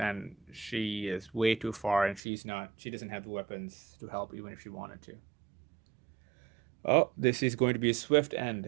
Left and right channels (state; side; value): drops out; left; at 2.2 s